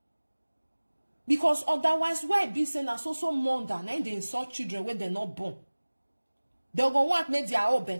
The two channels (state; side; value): inverted; both; correlation -1.00